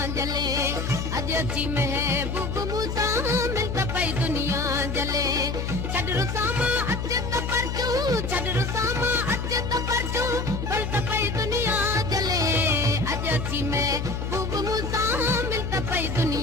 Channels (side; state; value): left; noise; hum, 3 dB below the sound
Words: जले, अजी महबूब मूसा मिलता पई दुनिया जले। छड़ रुसामा अचे त परचू, छड़ रुसामा अचे त परचू, मिलता पई दुनिया जले। अजी महबूब मूसा मिलता पई